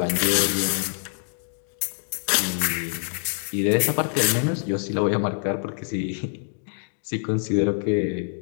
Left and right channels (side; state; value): right; silent; digital silence